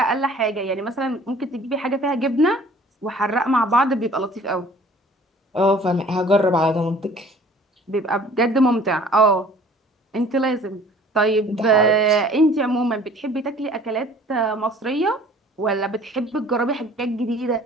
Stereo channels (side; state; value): both; normal; correlation 0.51